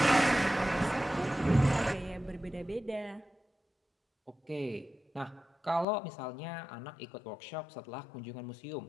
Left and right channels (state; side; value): drops out; right; at 5.9 s